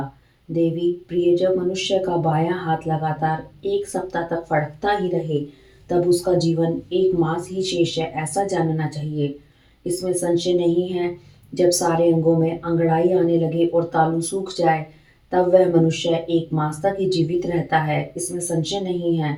देवी प्रिय, जब मनुष्य का बायां हाथ लगातार 1 सप्ताह तक फड़कता ही रहे तब उसका जीवन 1 मास ही शेष है, ऐसा जानना चाहिए। इसमें संशय नहीं है। जब सारे अंगों में अंगड़ाई आने लगे और तालू सूख जाए तब वह मनुष्य 1 मास तक ही जीवित रहता है, इसमें संशय नहीं है।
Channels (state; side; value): identical; both; correlation 1.00